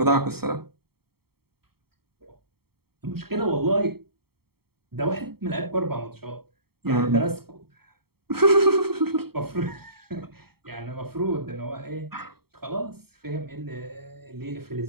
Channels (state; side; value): late; left; 0.95 ms